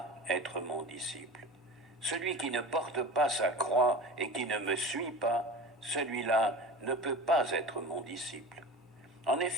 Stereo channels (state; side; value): normal; both; correlation 0.34